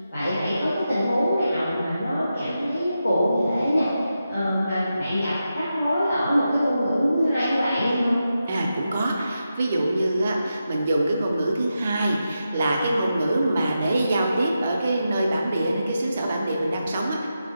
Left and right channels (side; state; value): both; inverted; correlation -0.88